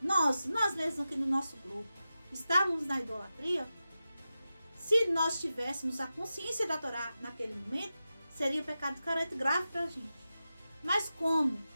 mesmos aqui no nosso grupo, estávamos na idolatria, se nós tivéssemos a consciência da Torá naquele momento, seria um pecado de careta grave para a gente. Mas como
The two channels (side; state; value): both; inverted; correlation -0.92